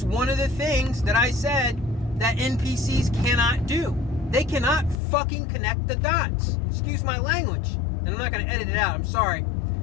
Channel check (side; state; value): right; drops out; at 5.0 s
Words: one of the things that I said that NPCs cannot do. They cannot fucking connect the dots. Excuse my language. And I'm not going to edit it out, I'm sorry.